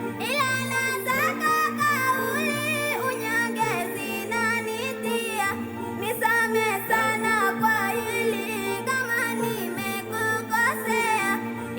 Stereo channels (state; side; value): identical; both; correlation 1.00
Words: ila nataka kauli unyonge zinanitia. Nisamehe sana kwa hili kama nimekukosea,